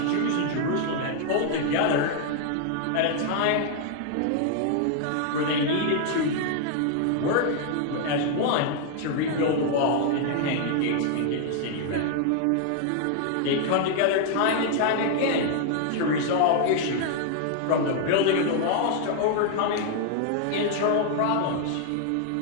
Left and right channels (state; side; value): different; both; correlation 0.00